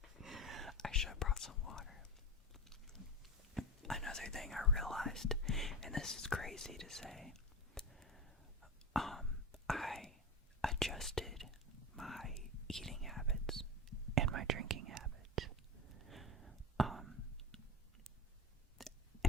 I should have brought some water. Another thing I realized, and this is crazy to say, I adjusted my eating habits and my drinking habits.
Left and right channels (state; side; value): normal; both; correlation 0.22